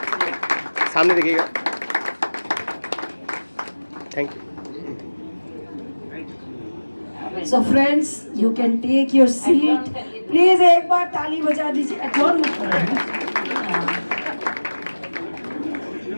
सामने देखिएगा। Thank you. So friends you can take your seat, please एक बार ताली बजा दीजिए। एडजॉर्न मत करो।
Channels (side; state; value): both; inverted; correlation -1.00